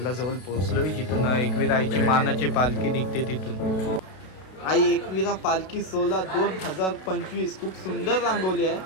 पोहोचलोय, जिथून एकवीरा आईची मानाची पालखी निघते तिथून। आई एकवीरा पालखी सोला 2025 खूप सुंदर रांगवली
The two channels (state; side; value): late; right; 32 ms